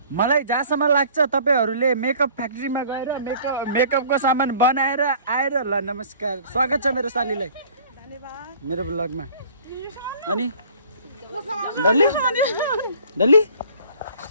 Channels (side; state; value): both; inverted; correlation -0.51